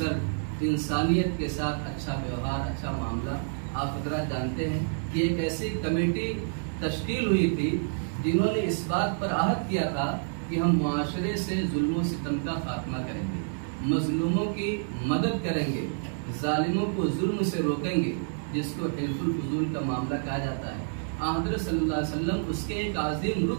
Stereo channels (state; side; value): silent; left; digital silence